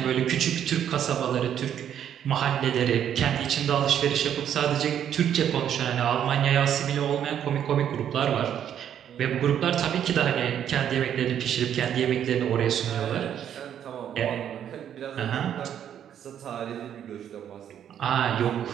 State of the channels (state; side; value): quieter; left; 9.6 dB